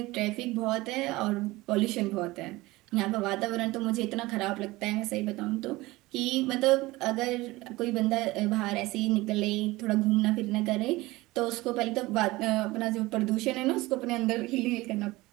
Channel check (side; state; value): left; quieter; 20.1 dB